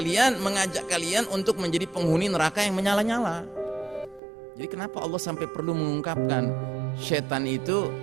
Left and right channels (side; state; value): left; drops out; at 4.2 s